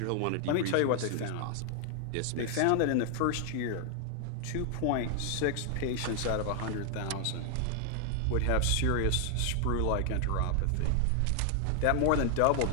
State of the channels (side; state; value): both; different; correlation 0.00